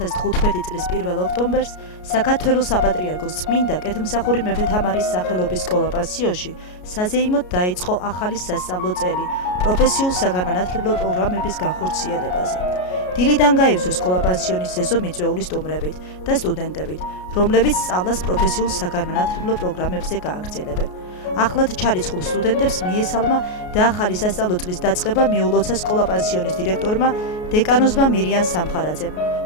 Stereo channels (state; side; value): late; right; 33 ms